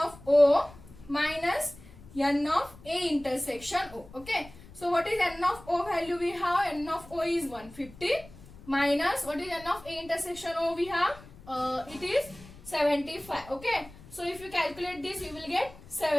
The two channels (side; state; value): left; noise; rumble, 20 dB below the sound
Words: O minus n of A intersection O. Okay. So what is n of O value? We have n of O is 150 minus what is n of A intersection O? We have it is 75. Okay, so if you calculate this, you will get